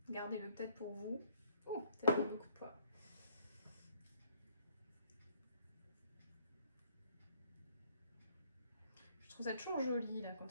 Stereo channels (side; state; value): both; inverted; correlation -0.64